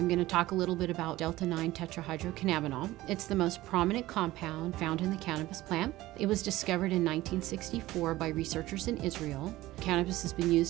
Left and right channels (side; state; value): left; quieter; 17.1 dB